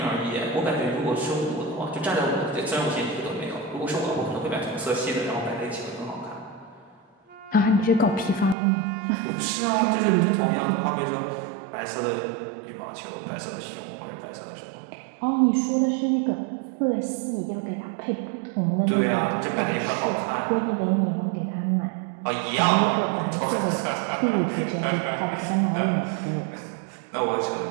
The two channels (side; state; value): left; drops out; at 8.6 s